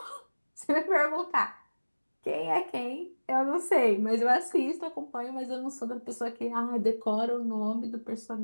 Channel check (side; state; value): both; inverted; correlation -1.00